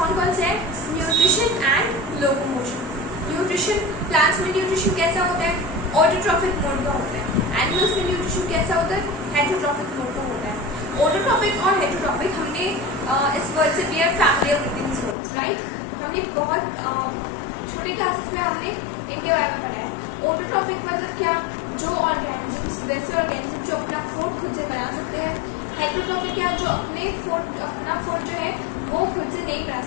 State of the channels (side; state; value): right; drops out; at 15.2 s